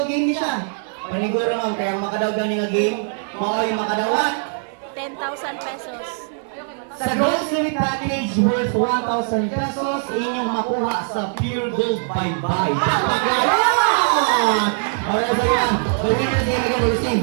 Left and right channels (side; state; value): left; silent; 65 dB below the other